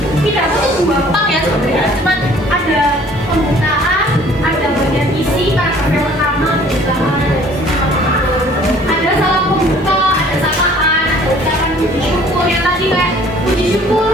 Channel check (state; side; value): normal; both; correlation 0.54